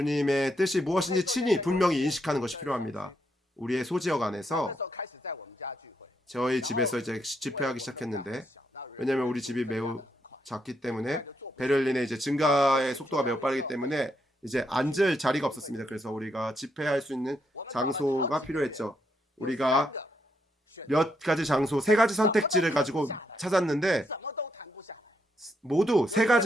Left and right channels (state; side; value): normal; both; correlation 0.77